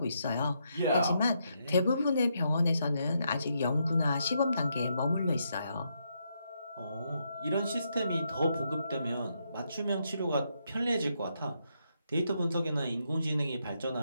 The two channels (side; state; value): both; inverted; correlation -0.79